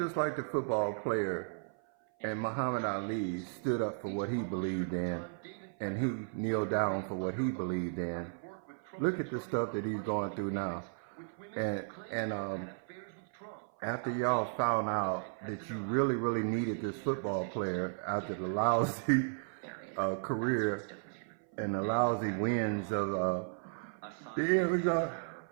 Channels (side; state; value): left; silent; 55 dB below the other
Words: like the football player and Muhammad Ali stood up for what he believed in, and he kneeled down for what he believed in. Look at the stuff that he's going through now, and after y'all found out that you really needed this football player after the lousy career and the lousy wins of the